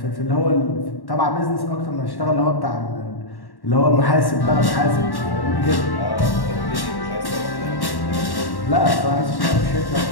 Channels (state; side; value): late; right; 1.1 ms